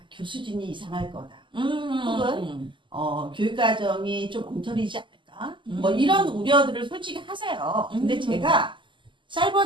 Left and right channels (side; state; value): left; late; 0.24 ms